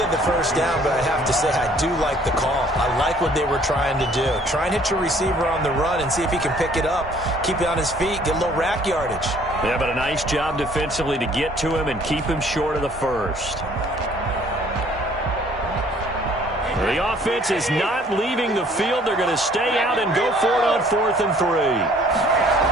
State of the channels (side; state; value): both; normal; correlation 0.58